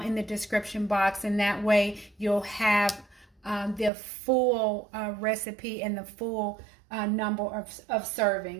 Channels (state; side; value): drops out; left; at 3.9 s